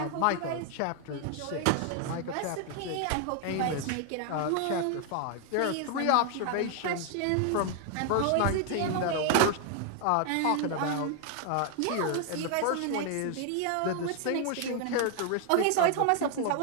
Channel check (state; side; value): different; both; correlation 0.00